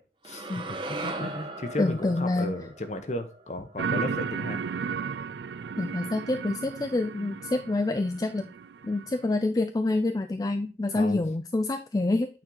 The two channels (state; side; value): normal; both; correlation 0.75